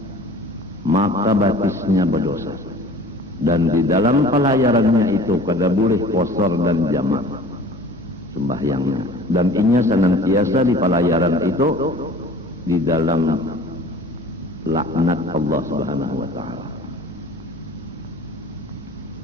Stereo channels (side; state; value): both; normal; correlation 0.45